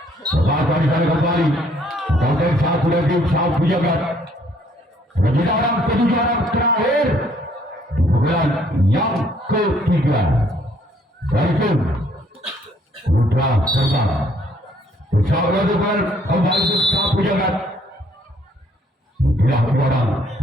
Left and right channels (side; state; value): both; normal; correlation 0.64